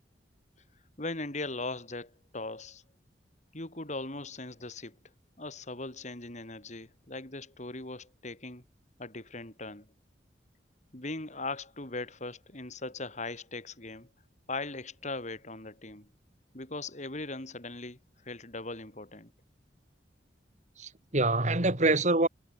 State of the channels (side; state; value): both; normal; correlation 0.16